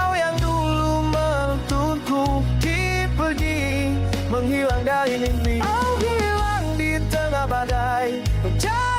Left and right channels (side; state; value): both; identical; correlation 1.00